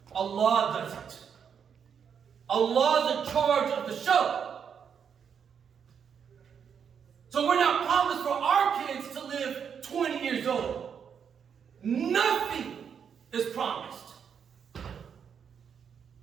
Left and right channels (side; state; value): left; quieter; 7.3 dB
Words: Allah does it. Allah's in charge of the show. So we're not promised for our kids to live 20 years old. Nothing is promised.